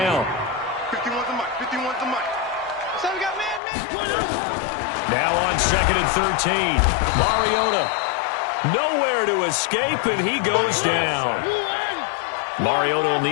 51's the mic. 51's the mic. So we got man. Now on 2nd and 13. Mariota. Nowhere to escape, and he goes down. Mariota will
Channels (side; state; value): right; drops out; at 3.6 s